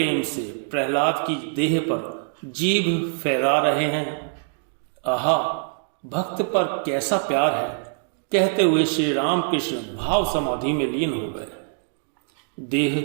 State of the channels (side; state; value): left; silent; digital silence